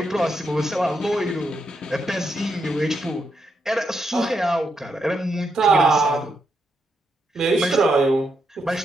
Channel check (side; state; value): both; normal; correlation 0.81